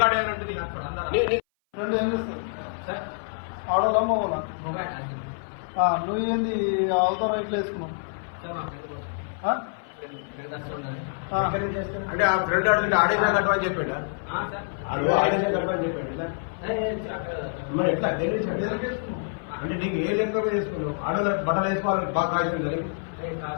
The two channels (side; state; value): right; silent; 58 dB below the other